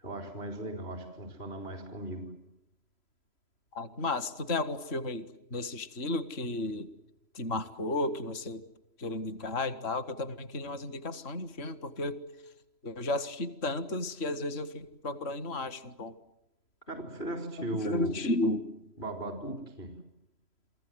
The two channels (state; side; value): late; right; 3.0 ms